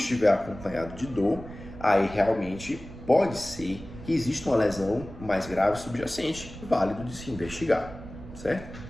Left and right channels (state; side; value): noise; right; rumble, 14 dB below the sound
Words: acompanhado de dor, aí realmente pode ser que exista uma lesão mais grave subjacente, válido de se investigar, certo?